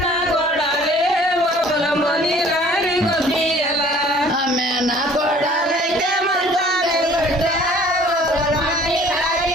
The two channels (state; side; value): normal; both; correlation 0.52